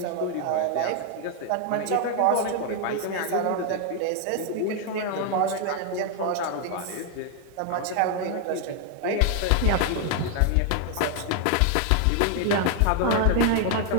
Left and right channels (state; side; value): different; both; correlation 0.00